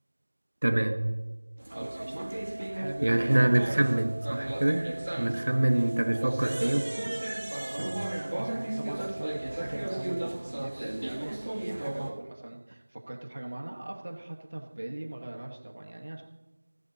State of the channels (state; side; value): inverted; both; correlation -1.00